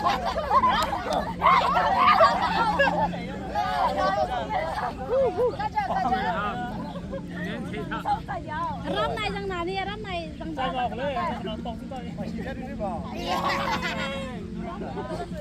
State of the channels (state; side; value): identical; both; correlation 1.00